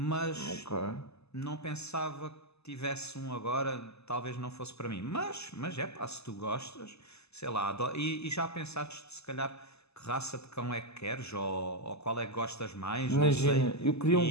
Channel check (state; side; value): late; right; 0.79 ms